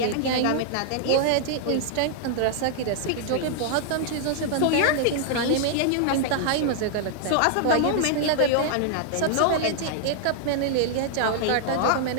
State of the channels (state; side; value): different; both; correlation -0.01